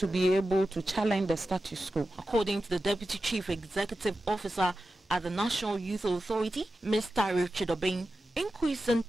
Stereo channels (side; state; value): both; normal; correlation 0.92